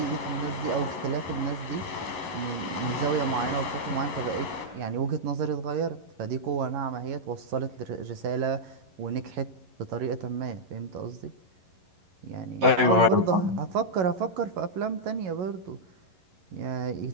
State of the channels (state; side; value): late; left; 11 ms